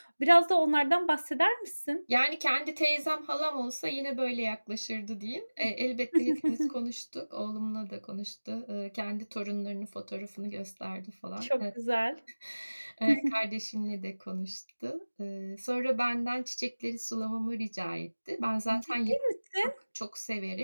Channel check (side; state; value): both; inverted; correlation -1.00